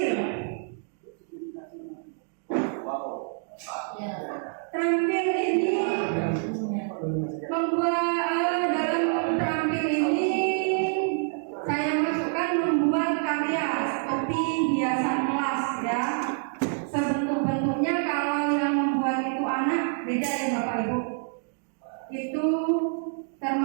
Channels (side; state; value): left; silent; 60 dB below the other